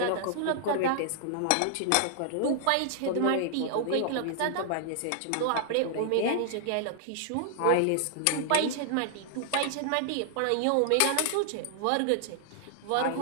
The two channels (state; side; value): different; both; correlation 0.00